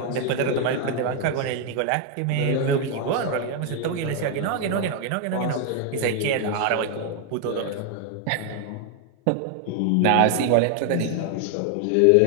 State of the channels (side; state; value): both; different; correlation 0.00